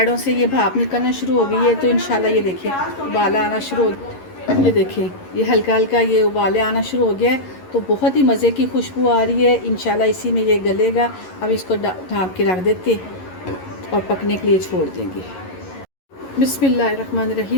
से ये भाप निकलना शुरू हो गई है, तो इंशाल्लाह ये देखिए उबाला आना शुरू हो। ये देखिए, ये हल्का हल्का ये उबाले आना शुरू हो गया है। तो बहुत ही मज़े की खुशबू आ रही है। इंशाल्लाह इसी में ये गलेगा। अब इसको ढाँप के रख देते और पकने के लिए छोड़ देंगे।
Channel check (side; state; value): right; late; 11 ms